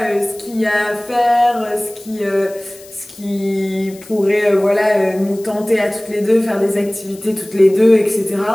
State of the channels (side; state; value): left; noise; hiss, 21 dB below the sound